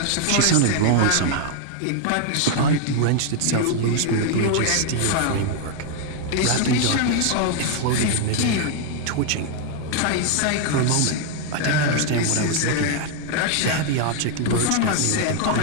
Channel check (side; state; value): both; different; correlation 0.00